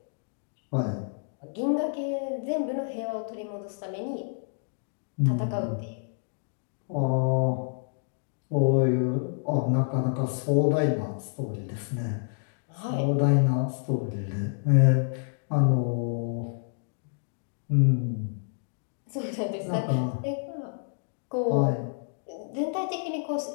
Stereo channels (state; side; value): silent; right; digital silence